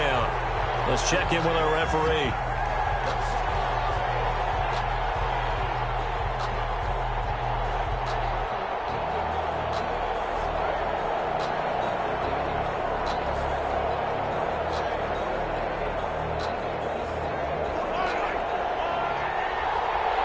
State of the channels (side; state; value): both; identical; correlation 1.00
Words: Let's check in with our referee.